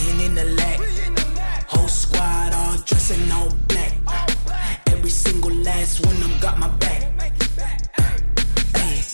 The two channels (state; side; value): inverted; both; correlation -1.00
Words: in the lag. Whole squad all dressing all black. Every single last one of them got my back. Hey,